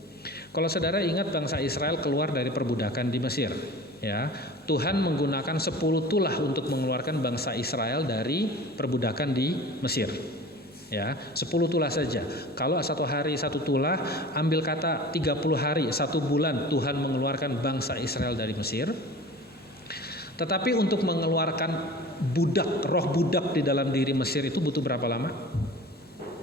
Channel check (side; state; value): both; normal; correlation 0.39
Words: Kalau saudara ingat bangsa Israel keluar dari perbudakan di Mesir, ya, Tuhan menggunakan 10 tulah untuk mengeluarkan bangsa Israel dari perbudakan di Mesir. Ya, 10 tulah saja. Kalau 1 hari 1 tulah, ambil kata 30 hari, 1 bulan Tuhan mengeluarkan bangsa Israel dari Mesir. Tetapi untuk mengeluarkan budak, roh budak di dalam diri Mesir itu butuh berapa lama?